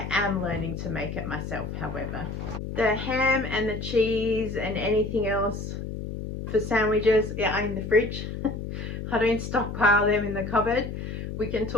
am learning to make it myself, however. The ham and the cheese and anything else for sandwiches are in the fridge. I don't stockpile them in the cupboard. We can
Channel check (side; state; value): left; noise; hum, 6 dB below the sound